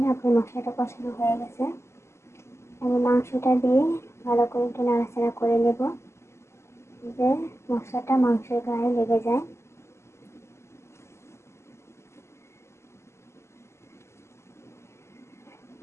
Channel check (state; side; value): late; right; 0.13 ms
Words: আপনার মশলাটা কষানো হয়ে গেছে। আমি মাংসটা দিয়ে ভালো করে একটু নাড়াচাড়া করে নেব, যে মশলাটা মাংসের গায়ে লেগে যায়।